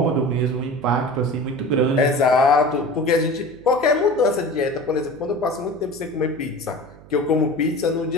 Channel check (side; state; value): right; noise; hum, 21 dB below the sound